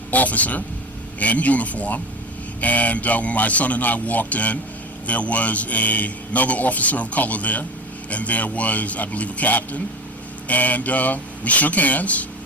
officer in uniform. And when my son and I walked in, there was another officer of color there, and there was, I believe, a captain. And we shook hands,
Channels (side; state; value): both; normal; correlation 0.30